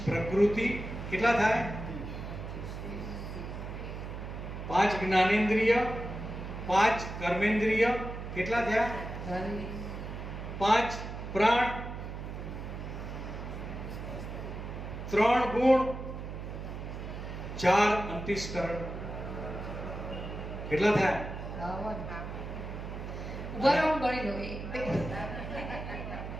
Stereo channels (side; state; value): right; noise; hum, 7 dB below the sound